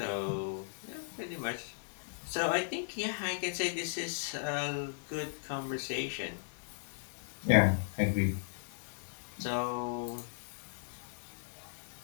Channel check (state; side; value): silent; right; digital silence